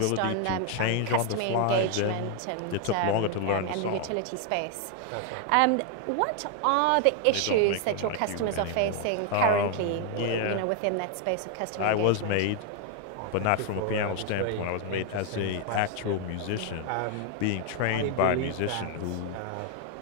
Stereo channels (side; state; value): both; different; correlation 0.00